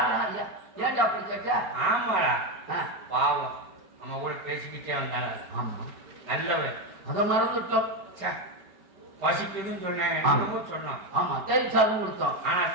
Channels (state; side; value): late; left; 5.3 ms